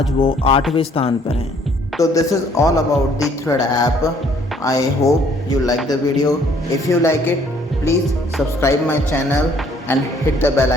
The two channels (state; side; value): normal; both; correlation 0.62